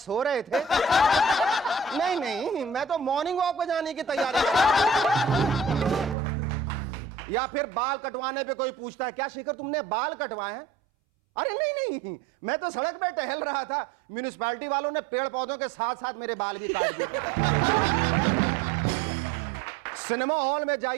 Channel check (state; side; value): drops out; left; at 6.2 s